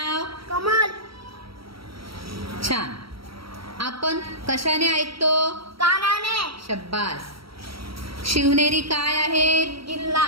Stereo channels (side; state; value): left; late; 0.75 ms